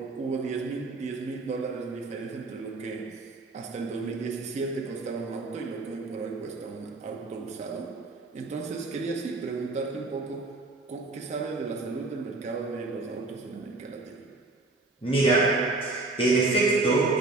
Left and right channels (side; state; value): left; quieter; 3.2 dB